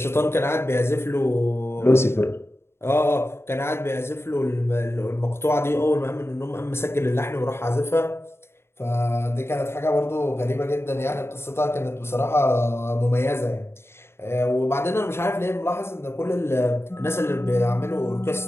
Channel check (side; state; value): right; late; 0.12 ms